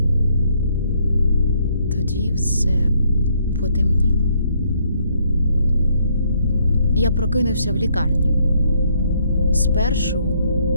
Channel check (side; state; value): both; inverted; correlation -0.70